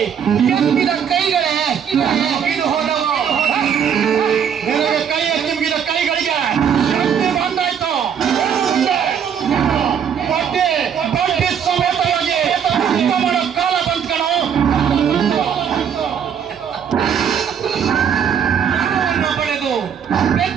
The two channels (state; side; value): quieter; left; 8.0 dB